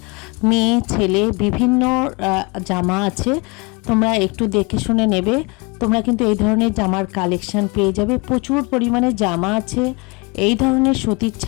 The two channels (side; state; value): right; quieter; 28.6 dB